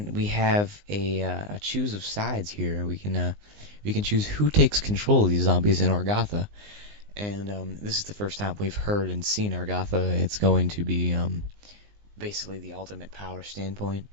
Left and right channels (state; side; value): late; left; 19 ms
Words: we have a choose of sides here, we can choose who takes control of these zombies in Argatha, and this is the first time we've heard and seen Argatha. It's going to be basically the ultimate power standpoint.